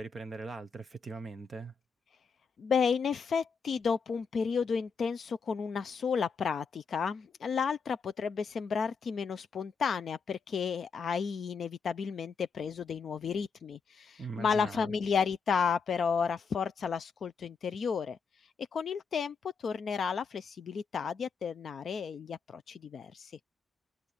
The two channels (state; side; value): quieter; right; 5.6 dB